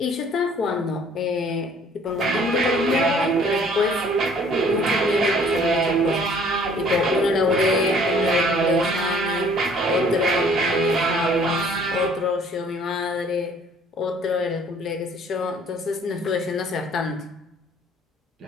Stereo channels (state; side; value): normal; both; correlation 0.56